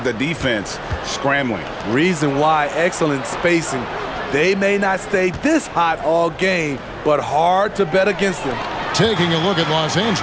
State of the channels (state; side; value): identical; both; correlation 1.00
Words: the defense scrambling. Reason why, excellent spacing. They may not stay this hot all game, but hard to bet against them. Taking a look at Los